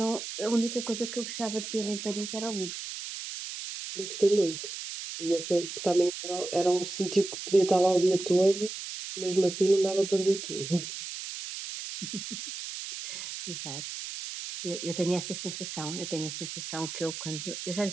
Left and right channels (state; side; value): noise; right; hiss, 8 dB below the sound